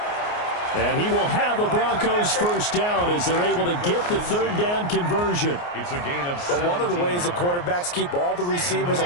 And he will have a Broncos first down as they're able to get the 3rd down conversion. It's a gain of 17. But one of the ways the quarterbacks keep all the receivers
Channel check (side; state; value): right; late; 29 ms